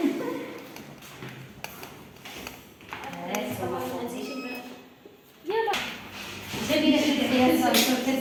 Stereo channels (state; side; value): identical; both; correlation 1.00